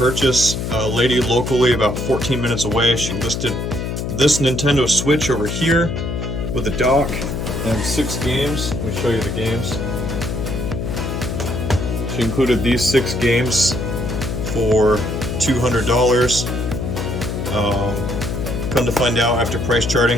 A lady locally about 14 minutes away, she listed this Nintendo Switch over here with a dock and 6 games. Let me show you the games. She included these 6 games for $200. Come to find out after price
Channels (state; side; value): noise; left; hum, 3 dB below the sound